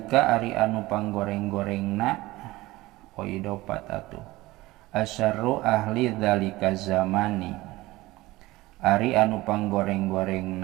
ari anu panggoreng-gorengna oidopat atuh. Asyarru ahli dzalika zamani ari anu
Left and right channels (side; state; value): left; quieter; 19.1 dB